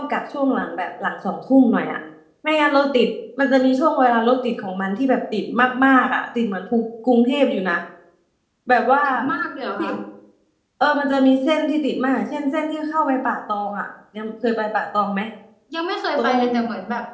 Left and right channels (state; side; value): identical; both; correlation 1.00